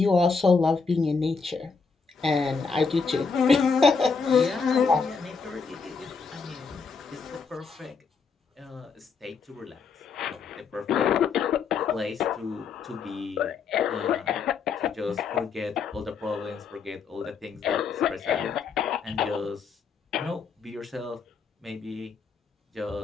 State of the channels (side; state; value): right; quieter; 5.2 dB